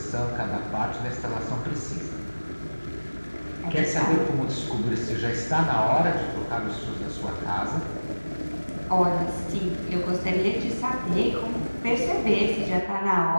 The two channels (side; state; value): both; inverted; correlation -1.00